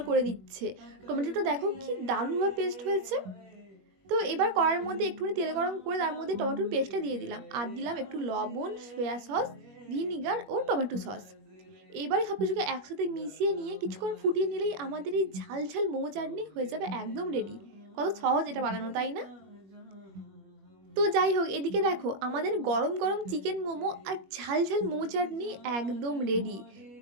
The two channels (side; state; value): left; late; 21 ms